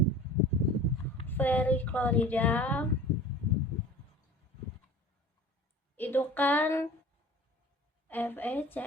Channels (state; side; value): normal; both; correlation 0.42